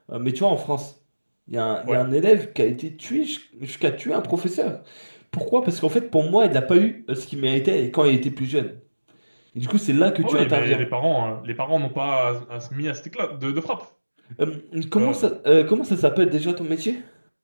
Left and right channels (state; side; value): inverted; both; correlation -1.00